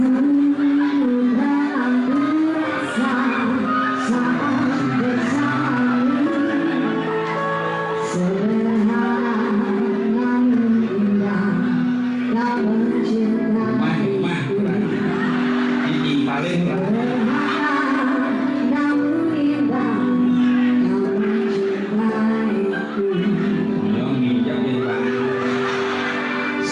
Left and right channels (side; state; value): both; identical; correlation 1.00